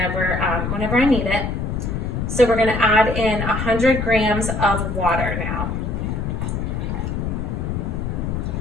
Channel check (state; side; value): noise; left; rumble, 2 dB below the sound